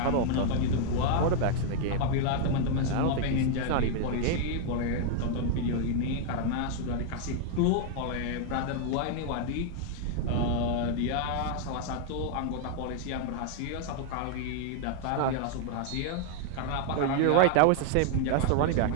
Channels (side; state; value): both; different; correlation 0.00